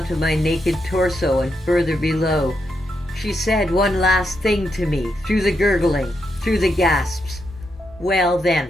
my naked torso and further below. She said one last thing to me, through the gurgling, through the gasps. Well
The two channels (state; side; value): normal; both; correlation 0.82